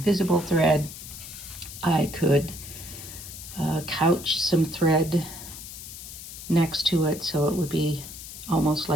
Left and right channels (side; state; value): left; noise; hiss, 12 dB below the sound